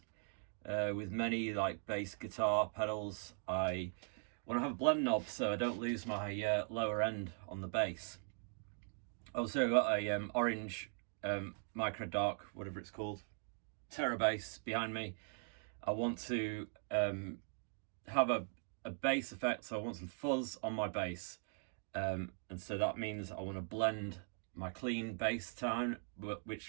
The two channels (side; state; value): left; silent; 51 dB below the other